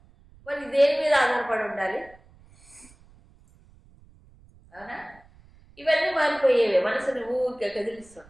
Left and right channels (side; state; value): right; noise; rumble, 27 dB below the sound